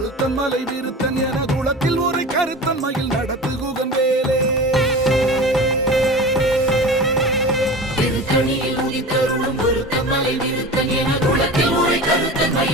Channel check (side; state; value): both; normal; correlation 0.33